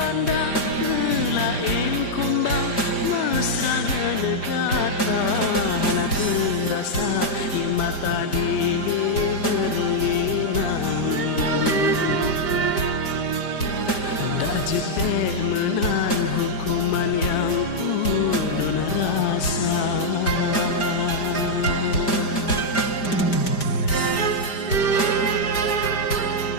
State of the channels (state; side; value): late; right; 5.0 ms